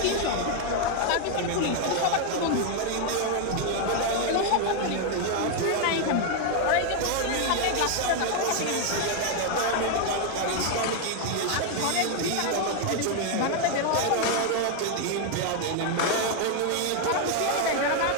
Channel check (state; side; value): different; both; correlation 0.01